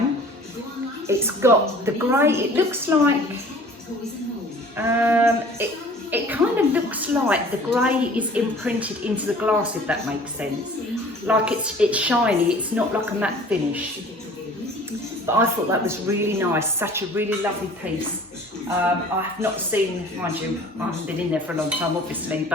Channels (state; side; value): normal; both; correlation 0.48